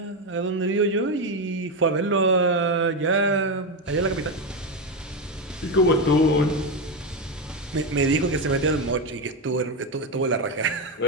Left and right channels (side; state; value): both; normal; correlation 0.11